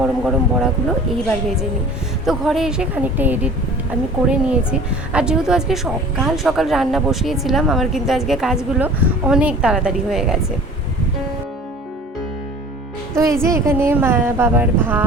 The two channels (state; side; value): normal; both; correlation 0.45